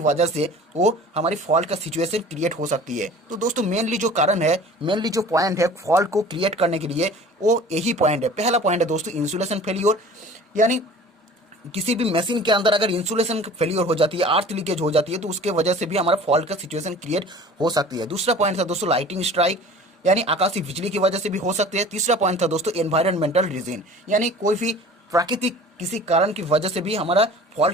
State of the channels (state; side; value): normal; both; correlation 0.44